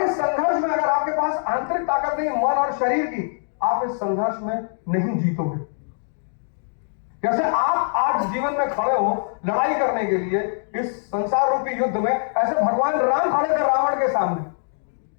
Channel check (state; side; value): silent; right; digital silence